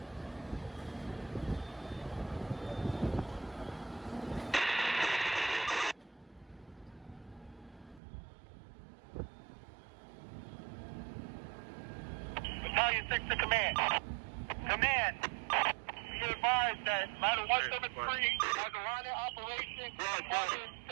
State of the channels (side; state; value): left; drops out; at 8.0 s